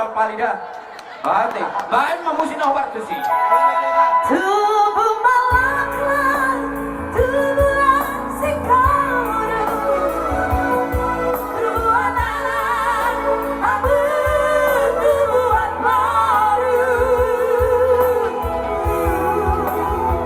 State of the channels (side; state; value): both; identical; correlation 1.00